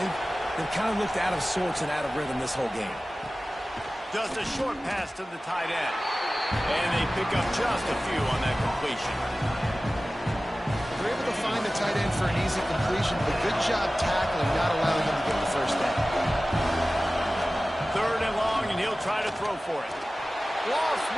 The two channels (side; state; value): both; normal; correlation 0.97